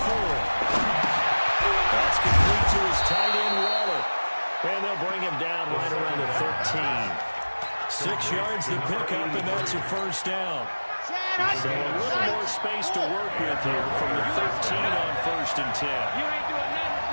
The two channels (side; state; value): both; inverted; correlation -1.00